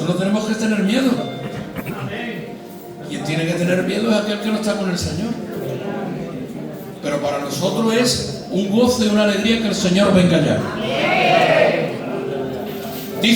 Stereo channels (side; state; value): both; identical; correlation 1.00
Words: no tenemos que tener miedo. Quien tiene que tener miedo es aquel que no está con el Señor. Pero para nosotros es un gozo y una alegría que el Señor venga ya.